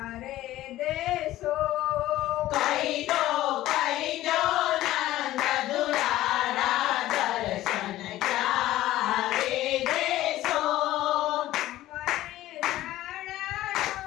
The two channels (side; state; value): right; quieter; 15.1 dB